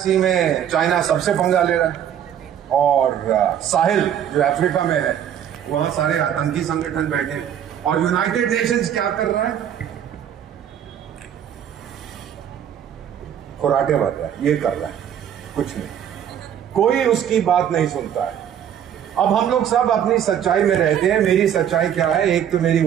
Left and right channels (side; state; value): left; quieter; 9.6 dB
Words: में चाइना सबसे पंगा ले रहा है, और साहिल जो अफ्रीका में है, वहां सारे आतंकी संगठन बैठे हैं। और यूनाइटेड नेशंस क्या कर रहा है? खुराटे भर रहा है, ये कर रहा है, कुछ नहीं, कोई उसकी बात नहीं सुनता है। अब हम लोग सब अपनी सच्चाई में रहते हैं। मेरी सच्चाई क्या है? एक तो मेरी